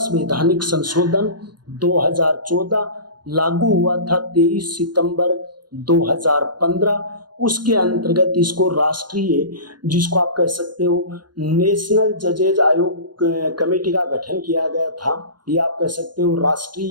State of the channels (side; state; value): left; late; 0.71 ms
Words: संशोधन 2014 लागू हुआ था 23 सितंबर 2015। उसके अंतर्गत इसको राष्ट्रीय जिसको आप कह सकते हो नेशनल जजेज आयोग कमेटी का गठन किया गया था, या आप कह सकते हो